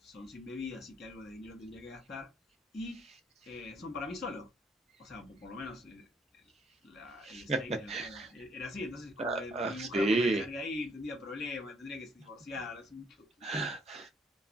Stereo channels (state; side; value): normal; both; correlation 0.67